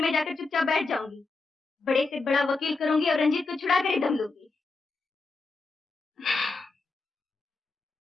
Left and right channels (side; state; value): right; quieter; 3.8 dB